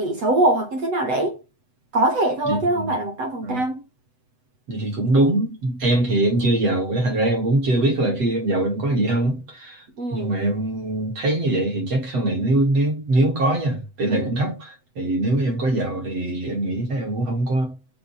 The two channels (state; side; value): late; left; 8.0 ms